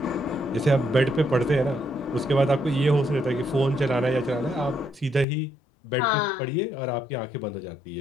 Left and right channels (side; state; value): right; drops out; at 5.2 s